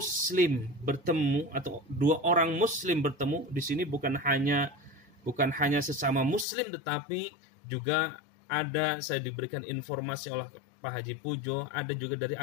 bertemu atau dua orang muslim bertemu, di sini bukan hanya sesama muslim, tetapi juga ada, saya diberikan informasi oleh Pak Haji Pujo, ada juga dari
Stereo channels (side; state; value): right; drops out; at 6.5 s